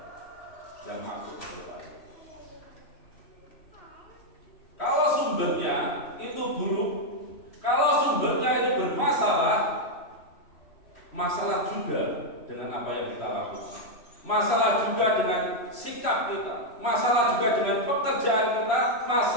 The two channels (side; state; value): right; late; 3.1 ms